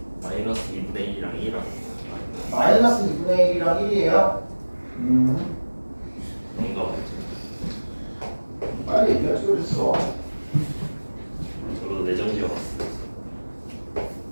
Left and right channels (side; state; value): both; inverted; correlation -1.00